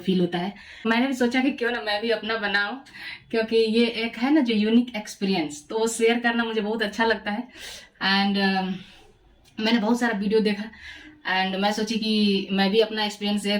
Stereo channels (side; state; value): both; identical; correlation 1.00